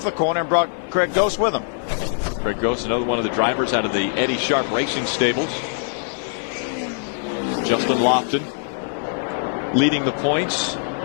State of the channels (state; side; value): silent; right; 63 dB below the other